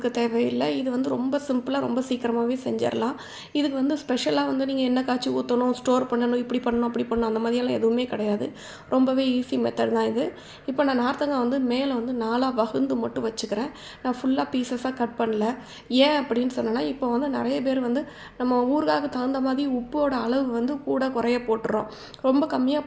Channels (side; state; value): both; identical; correlation 1.00